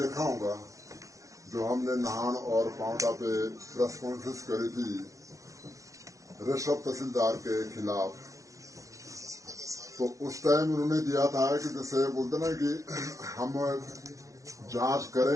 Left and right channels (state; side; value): late; left; 0.16 ms